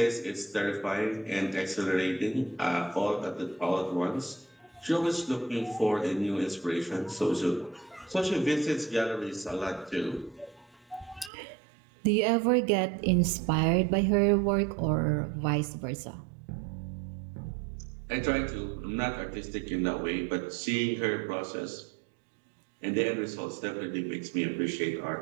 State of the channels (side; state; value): left; drops out; at 11.3 s